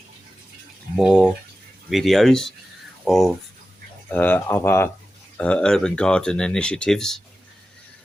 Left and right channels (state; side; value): normal; both; correlation 0.93